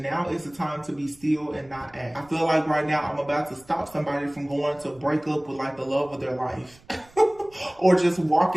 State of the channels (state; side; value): noise; right; rumble, 27 dB below the sound